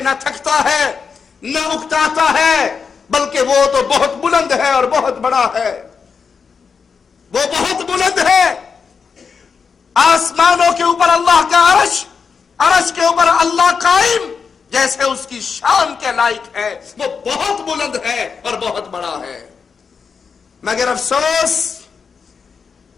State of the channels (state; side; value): quieter; right; 5.8 dB